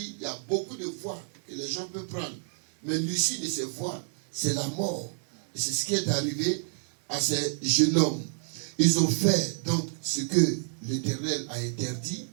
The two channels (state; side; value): silent; left; digital silence